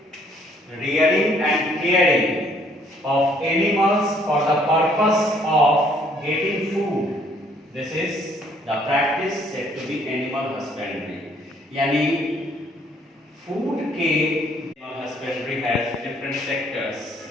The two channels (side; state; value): both; normal; correlation 0.64